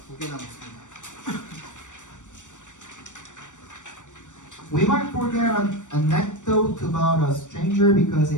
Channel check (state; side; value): late; right; 0.85 ms